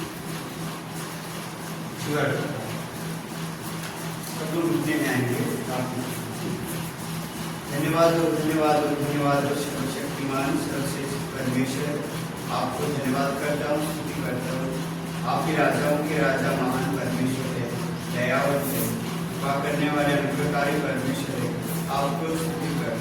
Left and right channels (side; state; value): both; identical; correlation 1.00